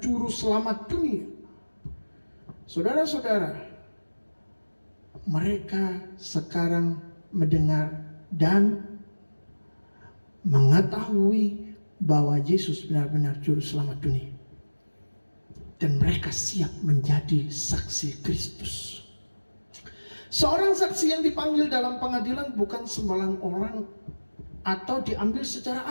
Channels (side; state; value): both; inverted; correlation -1.00